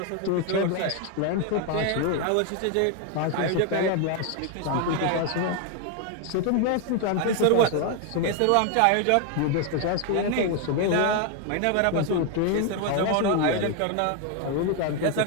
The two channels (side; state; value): both; different; correlation 0.01